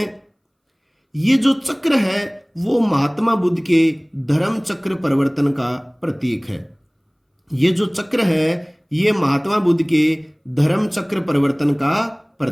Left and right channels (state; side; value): identical; both; correlation 1.00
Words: ये जो चक्र है वो महात्मा बुद्ध के धर्म चक्र परिवर्तन का प्रतीक है। ये जो चक्र है ये महात्मा बुद्ध के धर्म चक्र परिवर्तन का